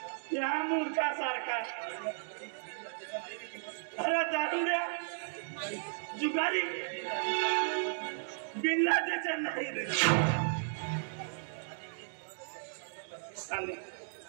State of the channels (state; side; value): silent; left; digital silence